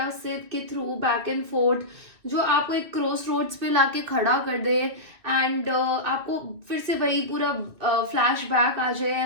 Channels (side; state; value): left; late; 2.3 ms